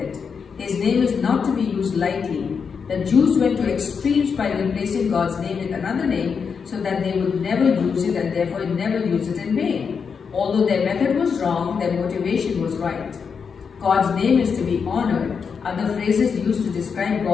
His name is not to be used lightly. The Jews went to extremes by replacing God's name with another name so that they would never use it and therefore never use it in vain. Although their method was wrong, their motivation was right. God's name is to be honored. Other phrases used to describe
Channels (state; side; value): quieter; right; 6.1 dB